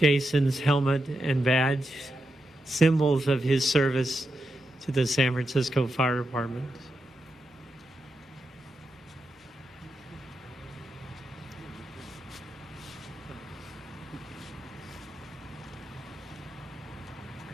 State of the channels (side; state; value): both; normal; correlation 0.86